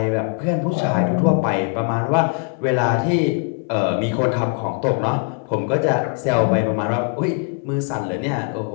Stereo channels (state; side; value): quieter; right; 39.5 dB